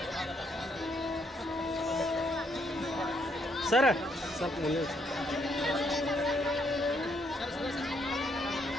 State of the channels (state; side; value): normal; both; correlation 0.73